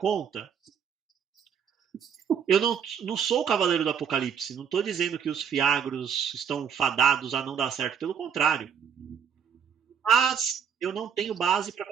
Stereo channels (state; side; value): quieter; left; 7.6 dB